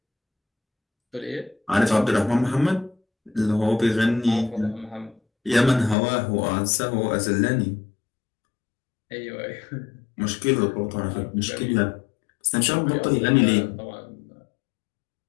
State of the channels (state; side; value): drops out; right; at 6.0 s